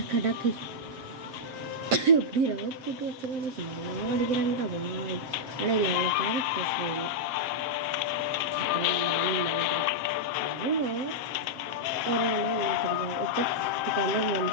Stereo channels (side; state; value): left; late; 7.6 ms